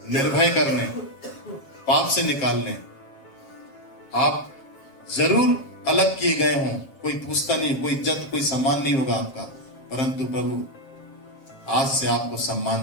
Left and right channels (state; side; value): late; right; 7.4 ms